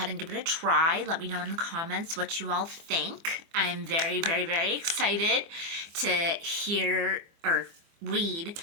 and give it a try. Let me know in the comments what you all think. I am very, very, very excited to hear or read,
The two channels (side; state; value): left; late; 24 ms